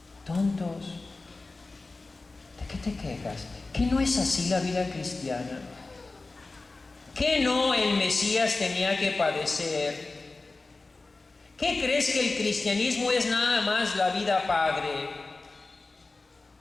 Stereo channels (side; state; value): right; quieter; 3.5 dB